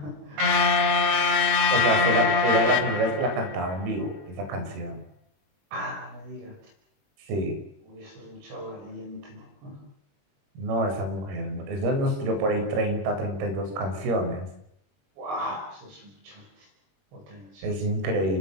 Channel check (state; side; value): late; left; 20 ms